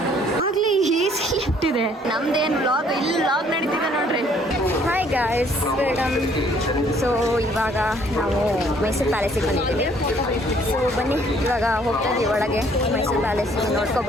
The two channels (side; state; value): both; normal; correlation 0.61